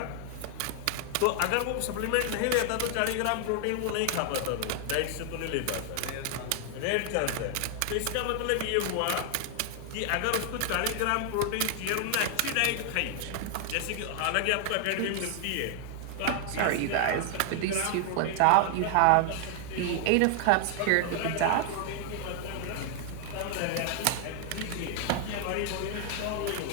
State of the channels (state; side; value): different; both; correlation 0.00